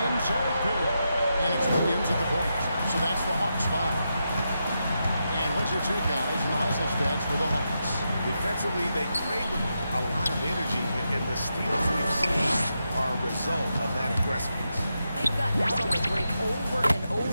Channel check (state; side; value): inverted; both; correlation -0.86